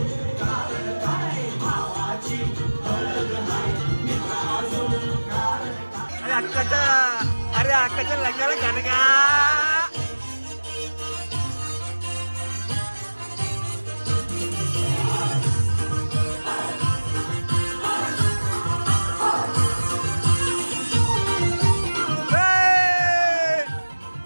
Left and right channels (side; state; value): both; inverted; correlation -1.00